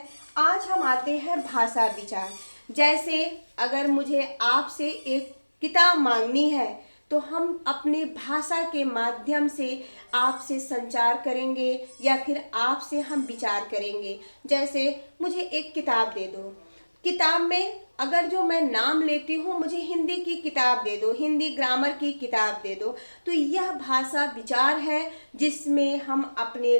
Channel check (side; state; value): both; inverted; correlation -1.00